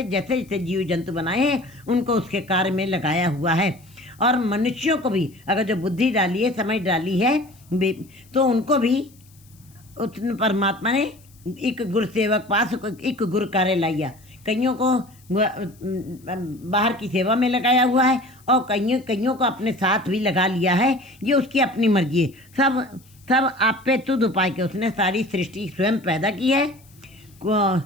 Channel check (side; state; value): left; noise; hiss, 29 dB below the sound